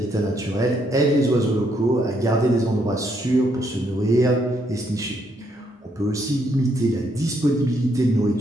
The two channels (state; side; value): normal; both; correlation 0.73